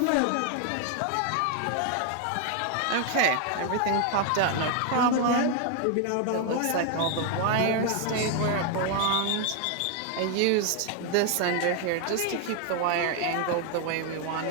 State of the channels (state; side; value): different; both; correlation 0.01